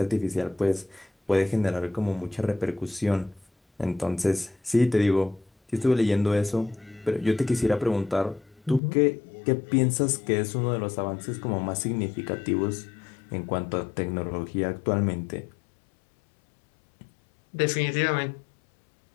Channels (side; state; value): right; drops out; at 8.8 s